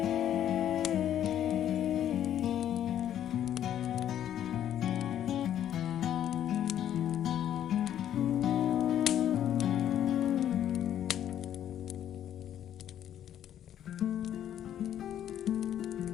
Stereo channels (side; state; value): right; quieter; 10.6 dB